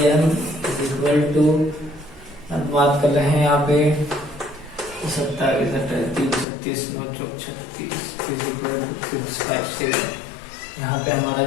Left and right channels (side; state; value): right; drops out; at 6.5 s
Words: is equal to, अब बात कर रहे हैं यहाँ पे 27, 36, 657, यहाँ पे हमारा